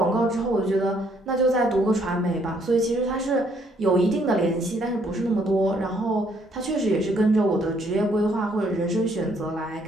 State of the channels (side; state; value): both; normal; correlation 0.68